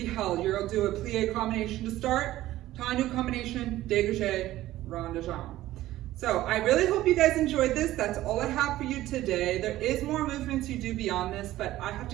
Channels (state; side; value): quieter; left; 15.2 dB